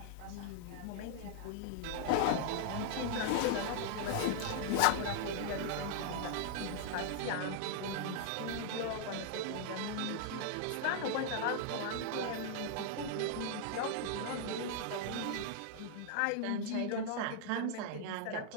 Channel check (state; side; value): different; both; correlation -0.01